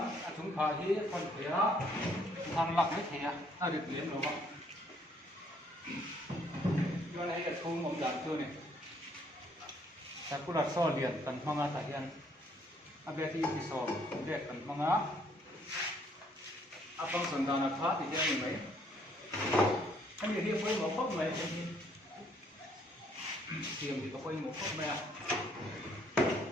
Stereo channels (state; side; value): normal; both; correlation 0.66